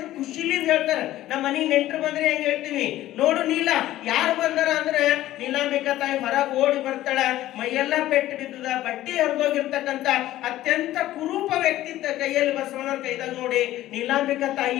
ಖುಷಿಲಿಂದ ಹೇಳ್ತಾರ. ನಮ್ಮ ಮನೆಗೆ ನೆಂಟರು ಬಂದ್ರೆ ಹೆಂಗ್ ಹೇಳ್ತೀವಿ, ನೋಡು ನೀಲ ಯಾರು ಬಂದಾರ ಅಂದ್ರೆ ನೀಲಾಂಬಿಕಾ ತಾಯಿ ಹೊರಗೆ ಓಡಿ ಬರ್ತಾಳ. ಮೈಯೆಲ್ಲ ಪೆಟ್ಟು ಬಿದ್ದದ, ಬಟ್ಟಿ ಹರಿದೋಗಿರ್ತಕ್ಕಂಥ ಅತ್ಯಂತ ಕುರೂಪ ವ್ಯಕ್ತಿತ್ವ ಕೈಯಲ್ಲಿ ಬಸವಣ್ಣರ ಕೈದಾಗ ನೋಡಿ ನೀಲಾಂಬಿಕಾ ತಾಯಿ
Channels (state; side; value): quieter; right; 14.6 dB